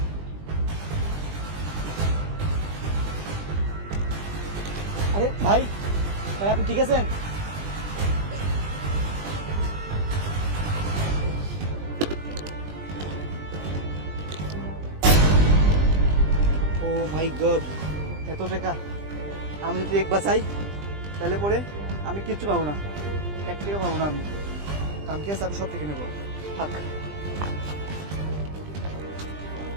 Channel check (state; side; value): late; left; 20 ms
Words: আরে ভাই ভাই আপনি ঠিক আছেন? ও মাই গড, এত টাকা! আমি যদি একবার চাই তাহলে পরে আমি কিচ্ছু পাবো না, 1 টাকা পাবো না। আমি কালকে আছে, আমি সব থেকে নেবো। থাক।